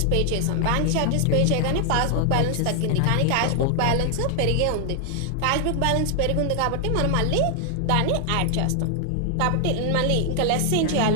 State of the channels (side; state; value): both; different; correlation 0.00